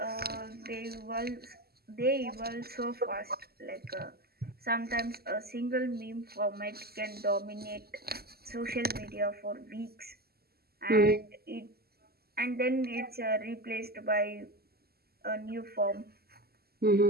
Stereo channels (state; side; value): late; left; 0.45 ms